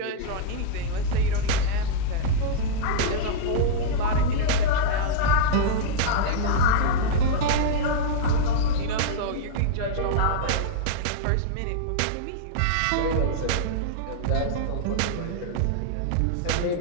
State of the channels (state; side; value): different; both; correlation -0.02